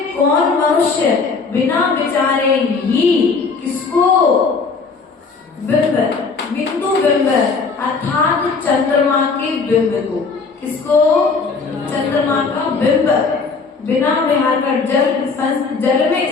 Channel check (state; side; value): quieter; right; 4.7 dB